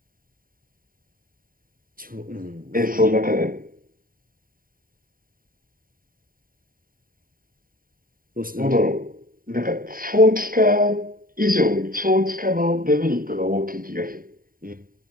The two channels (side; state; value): left; late; 0.41 ms